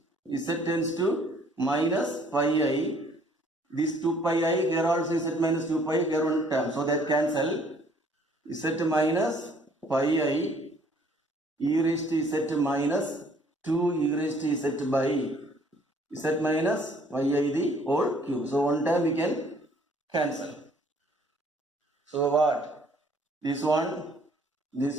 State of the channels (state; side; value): normal; both; correlation 0.60